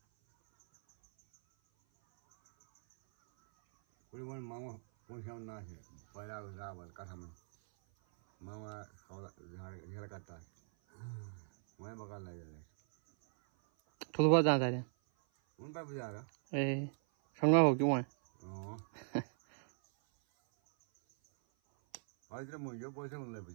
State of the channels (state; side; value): silent; left; 52 dB below the other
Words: कोई वन मामा पहुंचा ना है पहला रावल कथा में मामा घर करता है मैं बकार लगे थोड़ा बहुत जा रहे हैं उन पर भी जा रहा ए संगा हो क्यों है आज मुझे पैसे मिल